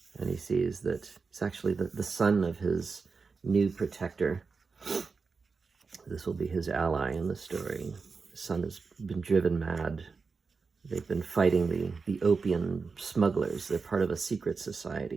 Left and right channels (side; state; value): left; quieter; 4.7 dB